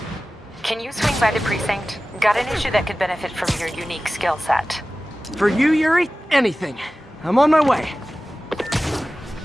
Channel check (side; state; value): both; normal; correlation 0.96